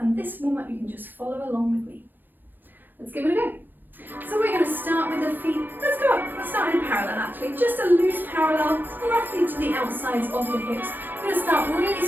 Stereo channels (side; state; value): left; late; 0.090 ms